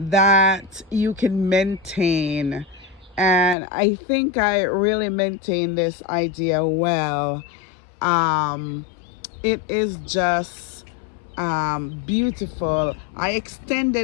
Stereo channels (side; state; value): right; drops out; at 3.6 s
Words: you can maintain. And I think I really maintain this idea well. Um, it is just beautiful. I